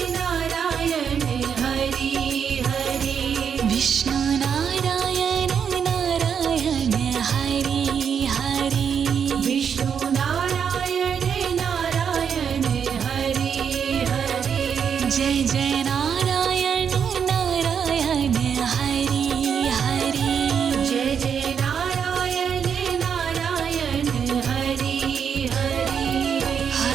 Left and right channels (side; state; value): left; quieter; 7.3 dB